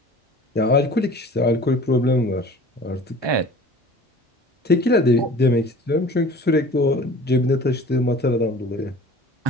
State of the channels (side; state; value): both; normal; correlation 0.44